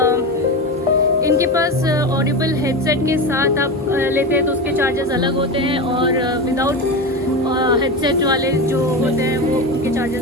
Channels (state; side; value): normal; both; correlation 0.21